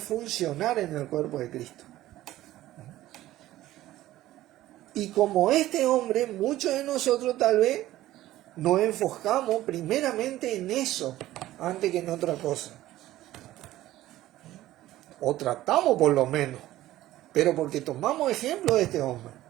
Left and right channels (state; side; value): quieter; left; 15.1 dB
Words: en el cuerpo de Cristo. Y como este hombre, muchos de nosotros tal vez nos enfocamos primeramente en eso, antes que en otra cosa. O tratamos por lo menos, pero porque tomamos ejemplo de este hombre.